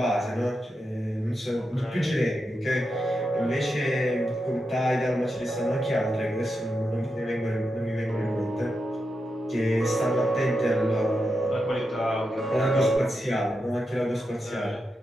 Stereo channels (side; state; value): both; normal; correlation 0.87